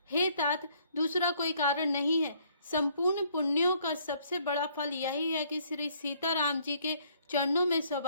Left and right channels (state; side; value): inverted; both; correlation -0.64